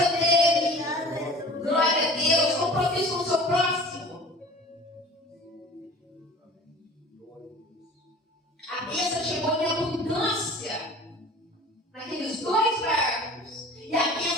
dele. Glória a Deus, compromisso com o seu próximo. A bênção chegou em abundância naqueles dois barcos. E a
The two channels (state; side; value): normal; both; correlation 0.42